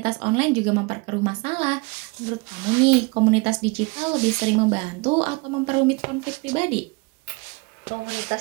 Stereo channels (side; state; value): left; quieter; 27.6 dB